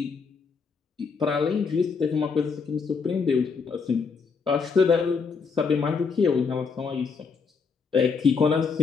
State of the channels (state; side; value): quieter; right; 5.3 dB